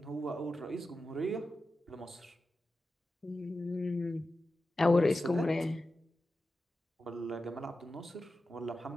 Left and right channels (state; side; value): normal; both; correlation 0.92